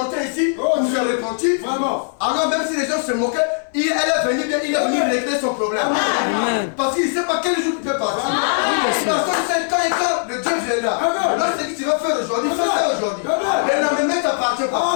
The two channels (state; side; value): silent; right; digital silence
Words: ici pour se repentir. Alors même si les gens se moquaient, elle est venue bien, il est venu régler son problème. Amen. Parce qu'il ne sait pas quel jour il peut partir. monsieur. Parce que c'est quand le Dieu viendra. Lorsque tu vas faire aujourd'hui, fais ça aujourd'hui. Mais le lendemain t'appartient pas.